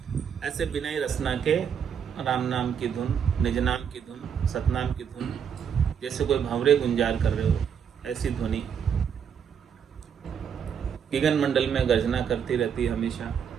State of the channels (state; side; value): quieter; left; 7.6 dB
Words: ऐसे बिना ही रसना के राम नाम की धुन, निज नाम की धुन, सतनाम की धुन, जैसे कोई भंवरे गुंजार कर रहे हो, ऐसी ध्वनि गिगन मंडल में गर्जना करती रहती हमेशा।